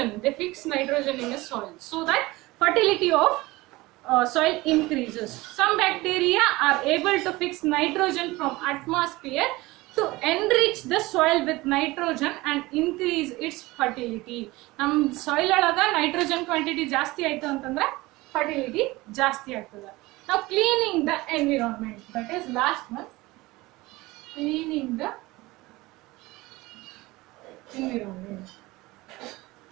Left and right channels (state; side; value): quieter; left; 20.7 dB